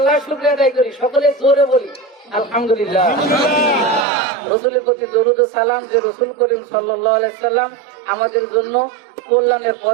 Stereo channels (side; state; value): left; drops out; at 4.0 s